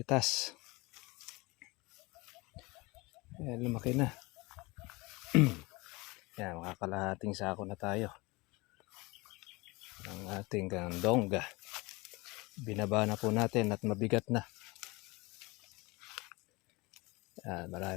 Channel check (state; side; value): quieter; right; 24.4 dB